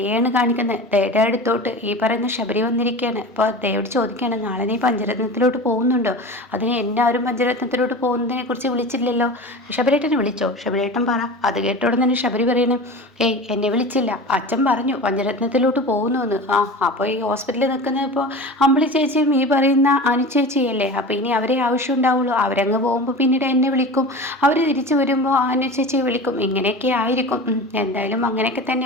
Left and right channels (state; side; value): normal; both; correlation 0.33